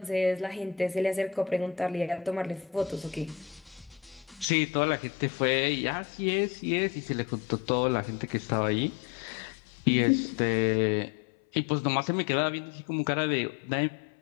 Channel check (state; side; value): drops out; right; at 4.5 s